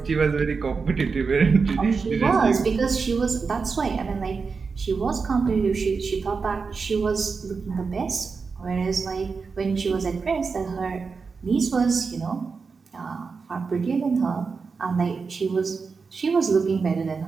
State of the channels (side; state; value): left; quieter; 4.9 dB